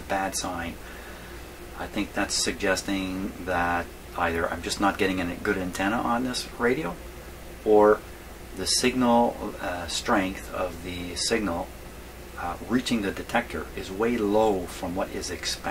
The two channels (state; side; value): identical; both; correlation 1.00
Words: bad sign. I think that's suggesting that either I'm just not getting a good antenna on this radio, or the signal strength of the signal reaching the detector is way low from what is